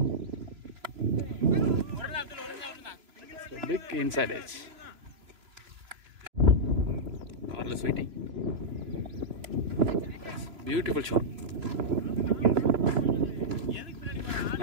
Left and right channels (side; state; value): left; late; 3.0 ms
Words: So big inside edge. Arless waiting. That's beautiful shot.